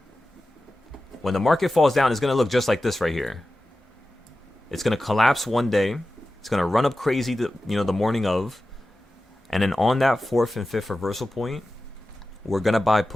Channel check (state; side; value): normal; both; correlation 0.94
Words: when the market falls down, it's going to look just like this right here. It's going to collapse one day. It's going to run up crazy, the morning of. And then on that 4th and 5th reversal point, we're going to buy